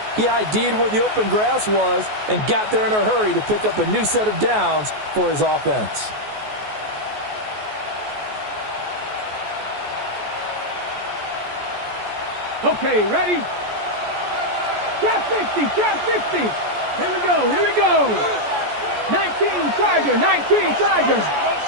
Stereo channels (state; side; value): late; left; 14 ms